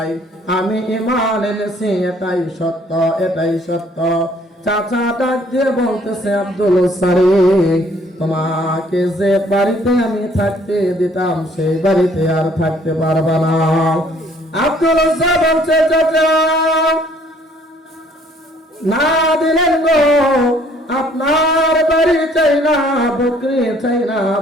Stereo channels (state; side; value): normal; both; correlation 0.61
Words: আমি ঈমান এনেছি, এটাই সত্য। চাচা ডাক দিয়ে বলতেছে, আব্দুল সারি, তোমাকে যে বাড়িতে আমি থাকতে দিতাম সেই বাড়িতে আর থাকতে পারবা না। আব্দুল বলছে, চাচা না দিলেন গো, আপনার বাড়ি চাই না, বকরি